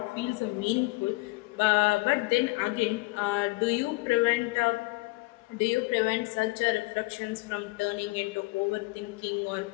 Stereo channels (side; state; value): right; quieter; 23.9 dB